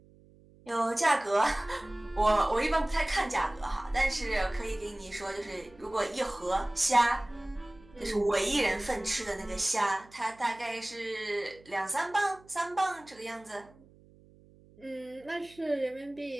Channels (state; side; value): noise; right; hum, 26 dB below the sound